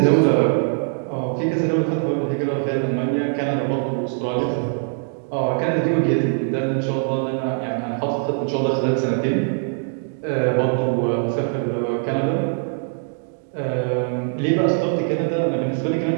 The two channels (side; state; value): left; silent; 58 dB below the other